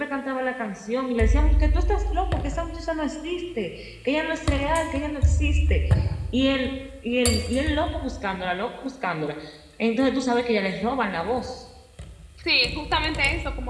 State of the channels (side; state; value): both; identical; correlation 1.00